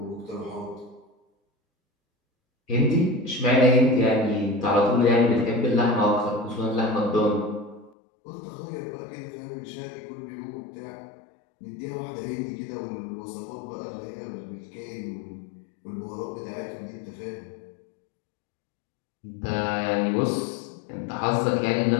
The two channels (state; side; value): drops out; right; at 7.9 s